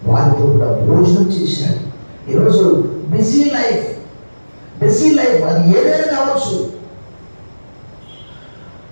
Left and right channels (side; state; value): both; inverted; correlation -1.00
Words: వారితో కూడా భోజనం చేశాడు. ఈరోజు బిజీ లైఫ్ అది ఏదైనా కావచ్చు.